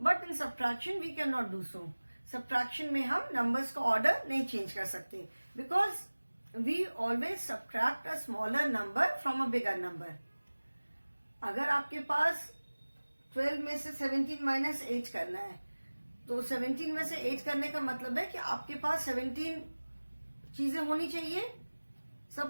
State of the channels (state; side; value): inverted; both; correlation -1.00